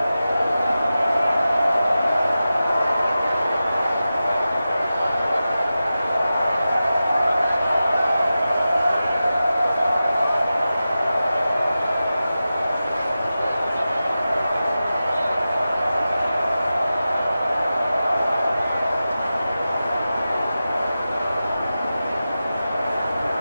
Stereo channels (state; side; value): inverted; both; correlation -0.93